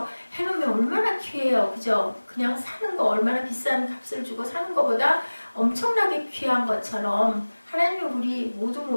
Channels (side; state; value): both; inverted; correlation -1.00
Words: 해놓으면 얼마나 귀해요, 그죠? 그냥 사는 거 얼마나 비싼 값을 주고 사는 것보다 엄청나게 귀한 것처럼 하나님은 우리